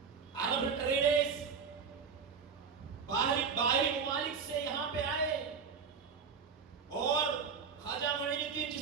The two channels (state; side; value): quieter; left; 5.9 dB